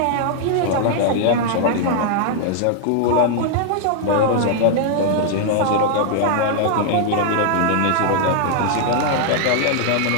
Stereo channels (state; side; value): different; both; correlation 0.00